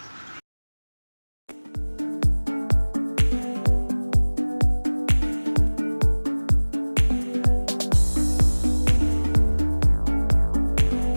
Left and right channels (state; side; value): inverted; both; correlation -1.00